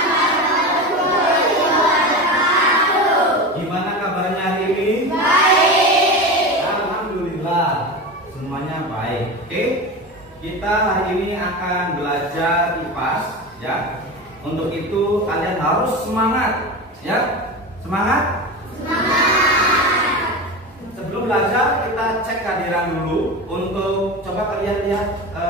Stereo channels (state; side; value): normal; both; correlation 0.25